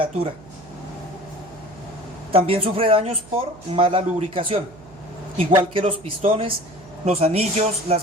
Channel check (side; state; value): right; noise; hum, 21 dB below the sound